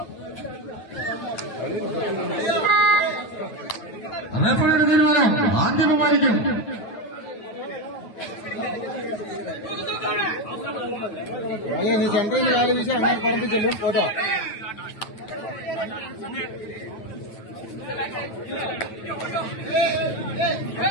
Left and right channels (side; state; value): right; late; 9.1 ms